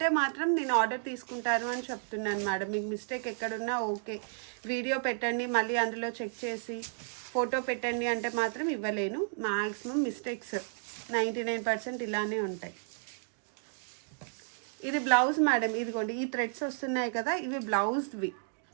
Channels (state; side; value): silent; left; digital silence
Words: మాత్రం నేను ఆర్డర్ తీసుకుంటాను అని చెప్తున్నాను మేడం. మీకు మిస్టేక్ ఎక్కడున్నా ఓకే, వీడియో పెట్టండి, మళ్ళీ అందులో చెక్ చేసి ఫోటో పెట్టండి అంటే మాత్రం ఇవ్వలేను. మ్యాక్సిమం మిస్టేక్స్ 99% ఇలానే ఉంటాయి. ఇది బ్లౌజ్ మేడం. ఇదిగోండి, ఈ థ్రెడ్స్ వస్తున్నాయి కదా, ఇవి బ్లౌజ్వి.